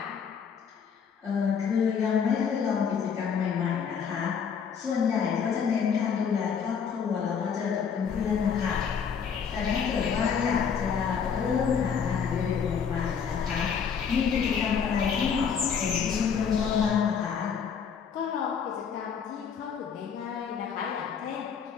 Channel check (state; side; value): quieter; right; 6.8 dB